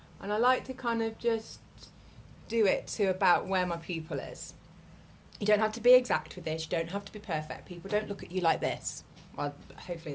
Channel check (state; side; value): identical; both; correlation 1.00